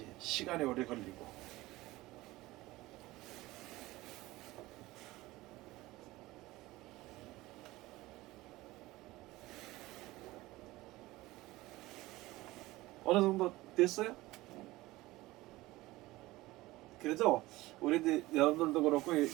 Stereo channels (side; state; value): left; quieter; 18.9 dB